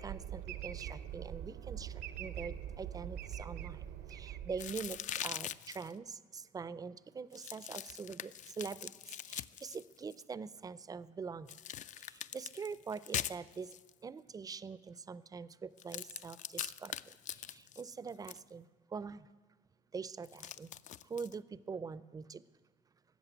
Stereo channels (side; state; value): both; normal; correlation 0.41